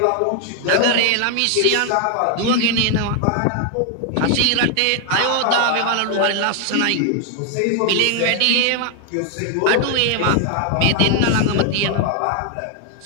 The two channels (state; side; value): different; both; correlation 0.00